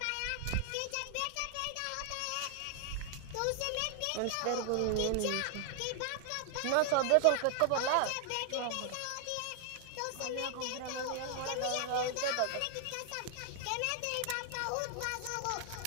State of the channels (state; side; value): different; both; correlation 0.00